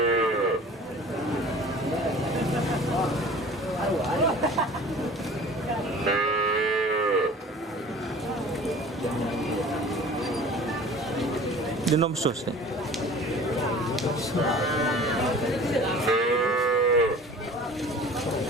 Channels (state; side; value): normal; both; correlation 0.44